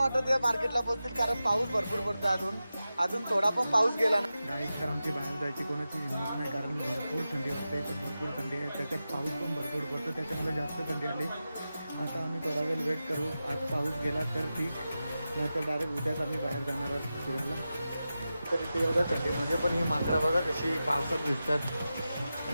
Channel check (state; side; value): inverted; both; correlation -0.93